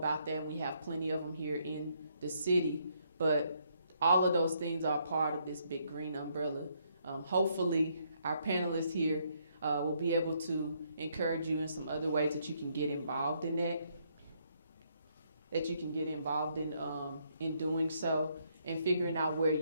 that, and we have plenty of them here in the city, but all of those things are part of this big green umbrella. Hopefully our panelists here will be able to encourage you in some other ways that you can get involved in that you can get involved in doing so, and figuring out where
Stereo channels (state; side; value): inverted; both; correlation -0.72